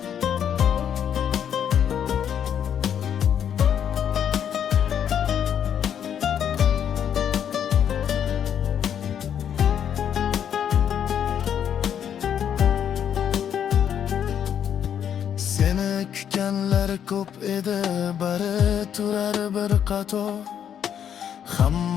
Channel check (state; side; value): quieter; right; 9.0 dB